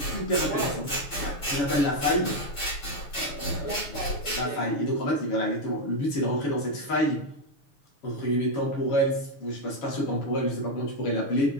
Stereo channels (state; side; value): late; right; 6.8 ms